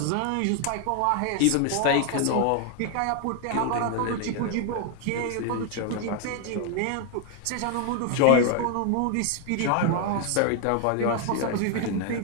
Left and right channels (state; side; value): different; both; correlation 0.00